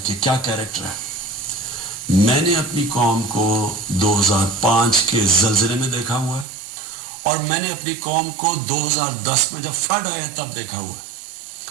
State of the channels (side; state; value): left; drops out; at 6.5 s